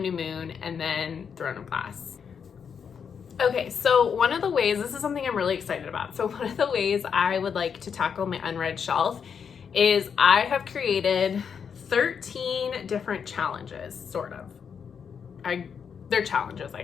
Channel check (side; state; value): right; quieter; 6.9 dB